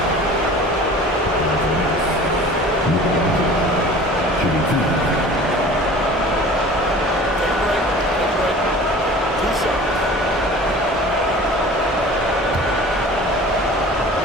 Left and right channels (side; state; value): both; normal; correlation 0.43